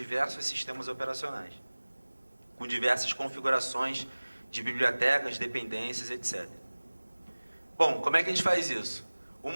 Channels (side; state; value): both; inverted; correlation -1.00